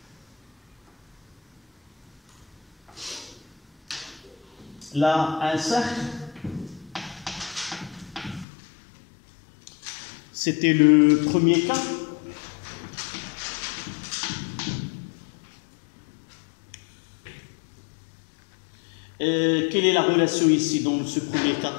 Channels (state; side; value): drops out; right; at 8.5 s